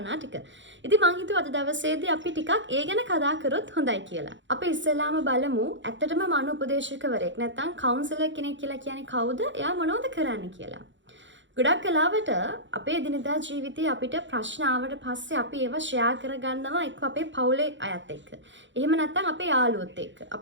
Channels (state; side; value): late; left; 0.54 ms